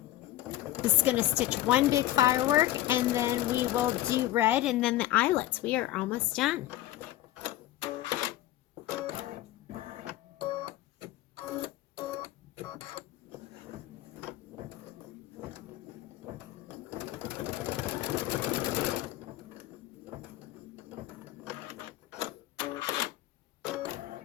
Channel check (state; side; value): quieter; right; 14.8 dB